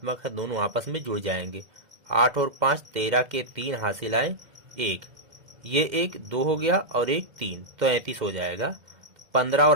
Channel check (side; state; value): left; late; 2.1 ms